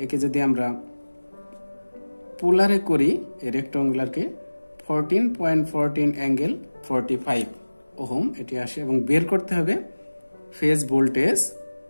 একে যদি আমরা পোলারে করি এই রেক্টাঙ্গুলারকে 14.14∠45 ওহম এটি আসে। এবং বের করতে হবে ফেজ ভোল্টেজ,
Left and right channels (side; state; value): both; inverted; correlation -1.00